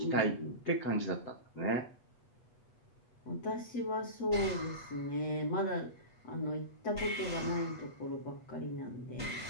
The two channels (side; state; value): right; late; 8.2 ms